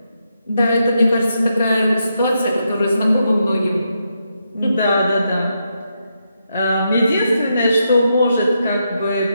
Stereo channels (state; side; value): inverted; both; correlation -0.82